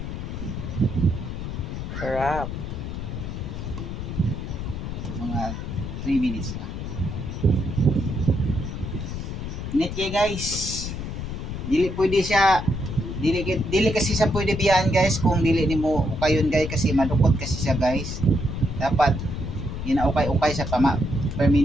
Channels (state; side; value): noise; left; rumble, 6 dB below the sound